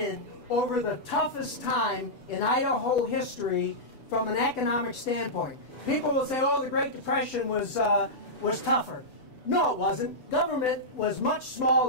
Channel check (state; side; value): late; right; 6.9 ms